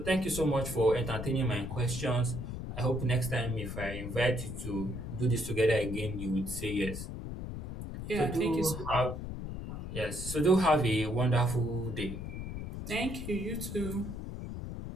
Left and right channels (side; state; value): left; noise; rumble, 7 dB below the sound